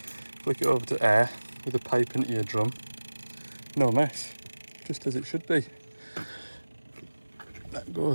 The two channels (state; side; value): inverted; both; correlation -1.00